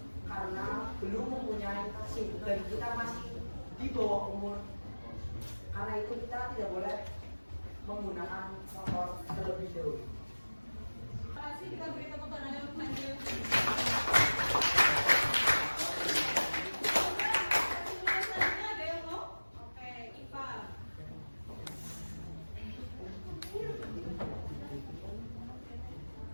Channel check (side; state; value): both; inverted; correlation -1.00